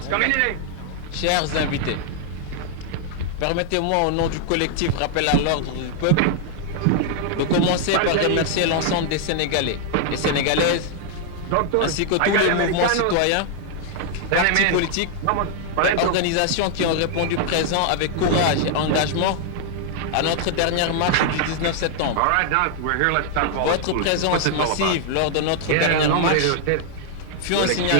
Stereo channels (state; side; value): different; both; correlation 0.00